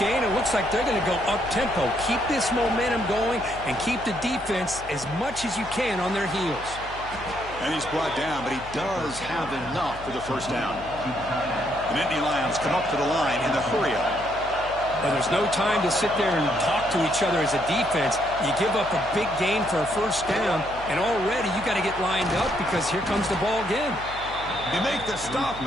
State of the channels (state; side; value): noise; left; hum, 15 dB below the sound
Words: It looks like they're going to go up-tempo. Keep this momentum going and keep the defense as much as you can on their heels. And he's brought down, but he does have enough for the first down. The Nittany Lions come up to the line in the hurry-up. Well, there's no time to sit there and talk to each other as a defense. You give up a big gain for a first down, and already you got to get lined up because here comes the ball again. They make the stop,